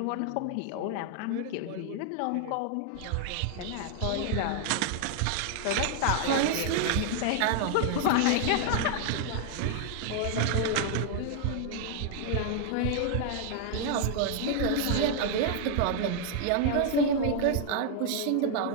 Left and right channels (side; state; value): both; different; correlation 0.00